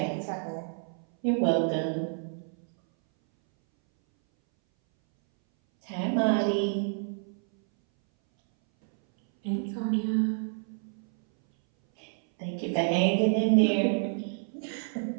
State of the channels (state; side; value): silent; left; 59 dB below the other